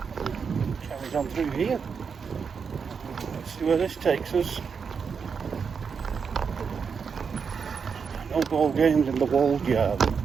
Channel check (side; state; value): left; quieter; 6.0 dB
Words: Carries on through here. Let's see where this takes us. No ball games in the wall garden.